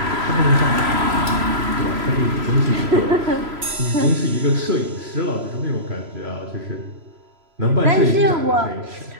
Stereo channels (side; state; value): left; late; 3.0 ms